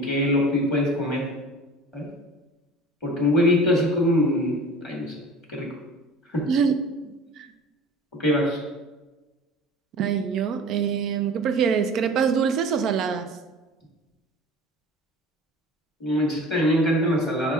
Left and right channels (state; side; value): normal; both; correlation 0.41